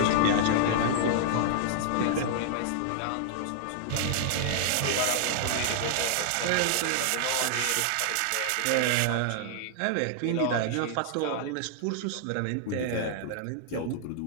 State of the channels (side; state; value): both; different; correlation -0.01